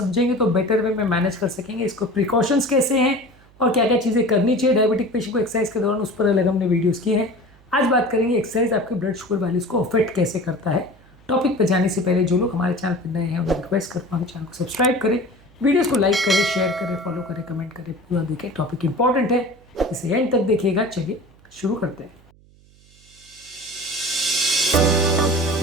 तो बेटर वे में मैनेज कर सकेंगे। इसको प्रिकॉशंस कैसे हैं और क्या क्या चीज़ें करनी चाहिए डायबिटिक पेशेंट को एक्सरसाइज के दौरान, उस पर अलग हमने वीडियोज़ किए हैं। आज बात करेंगे एक्सरसाइज आपके ब्लड शुगर वैल्यूज़ को अफेक्ट कैसे करता है। टॉपिक पर जाने से पहले जो लोग हमारे चैनल पर नए हैं उन्हें रिक्वेस्ट करता हूँ चैनल को सब्सक्राइब करें, वीडियोस को लाइक करें, शेयर करें, फॉलो करें, कमेंट करें, पूरा देखें। टॉपिक इंपॉर्टेंट है, इसे एंड तक देखिएगा। चलिए शुरू करते हैं।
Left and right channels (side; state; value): right; noise; hum, 28 dB below the sound